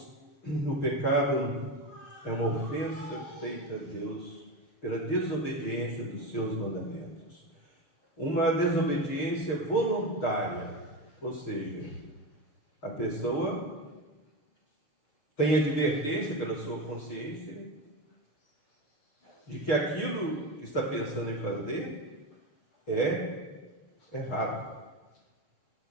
o pecado é uma ofensa feita a Deus pela desobediência dos seus mandamentos. Uma desobediência voluntária, ou seja, a pessoa tem advertência pela sua consciência de que aquilo que está pensando em fazer é errado,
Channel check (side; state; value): right; late; 6.9 ms